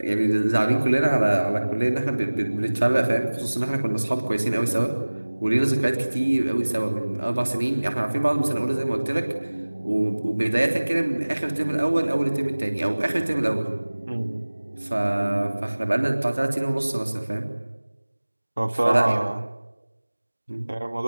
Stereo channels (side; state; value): both; inverted; correlation -1.00